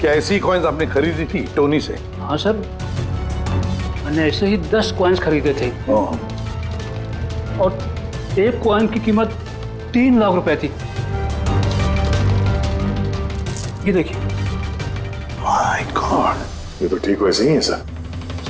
ऐसी कॉइन्स आपने खरीदी थी टोनी से? हाँ सर, मैंने ऐसे ही 10 कॉइन्स खरीदे थे और एक कॉइन की कीमत 3 लाख रुपए थी। ये देखिए। माय गॉड, ये तो ठीक वैसे ही है सर।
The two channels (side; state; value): both; identical; correlation 1.00